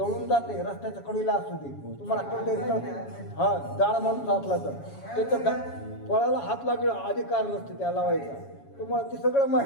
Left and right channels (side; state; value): right; late; 7.2 ms